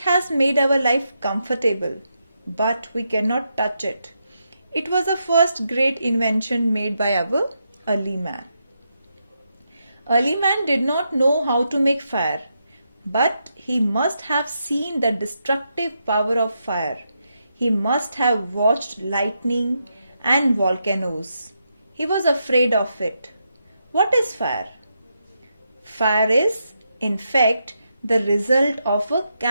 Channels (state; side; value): inverted; both; correlation -0.83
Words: made our life comfortable, but we cannot touch it. It was the first great invention made by our early man. Early man did not know how to make fire, but he must have seen the destructive power of fire. He must have watched lightning and volcanoes. He was afraid of it. What is fire? Fire is, in fact, the result of a